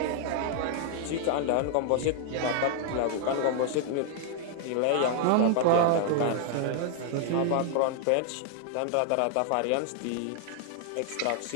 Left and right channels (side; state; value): both; different; correlation 0.00